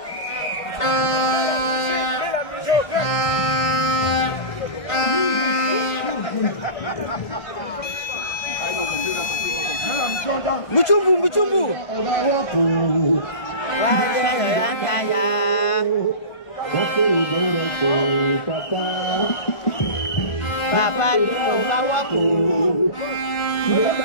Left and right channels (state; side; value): late; right; 1.5 ms